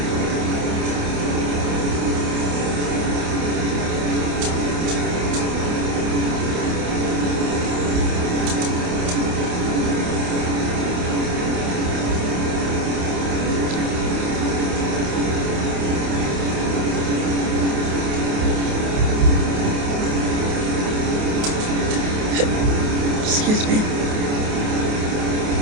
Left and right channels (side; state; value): left; late; 28 ms